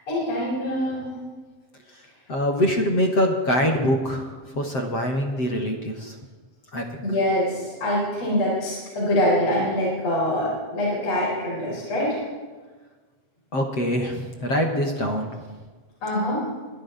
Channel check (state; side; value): late; right; 7.7 ms